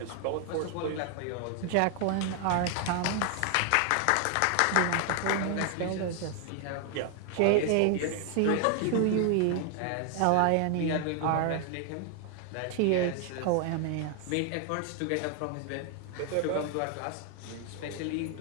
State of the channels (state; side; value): different; both; correlation 0.00